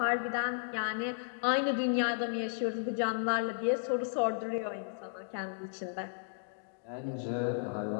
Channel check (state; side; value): silent; right; digital silence